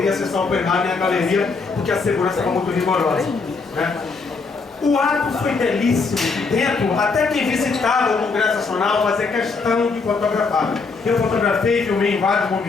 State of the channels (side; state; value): right; quieter; 4.4 dB